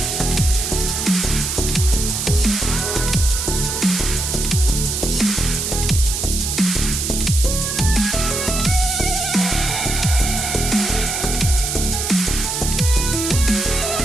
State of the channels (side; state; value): right; noise; hiss, 2 dB below the sound